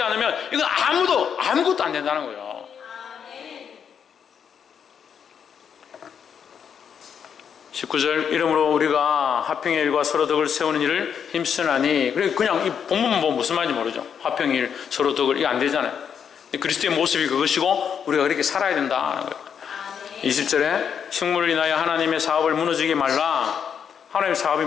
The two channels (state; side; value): quieter; right; 7.6 dB